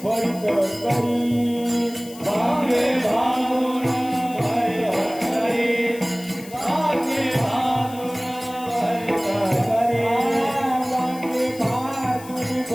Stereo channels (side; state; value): left; noise; hiss, 18 dB below the sound